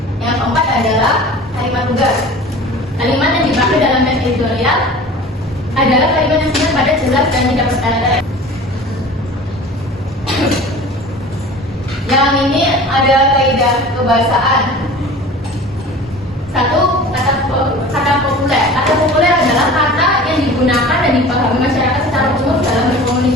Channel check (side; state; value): both; normal; correlation 0.40